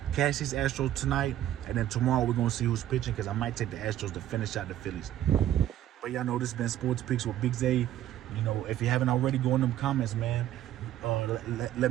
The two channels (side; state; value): left; quieter; 12.4 dB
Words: Cash these Astros tonight, and then tomorrow we're going to see who's pitching, because I might take the Astros to finish out the Phillies. But y'all know this has been Sports Picks with Big Zay. You know, if you haven't already, go in them comments, man. Let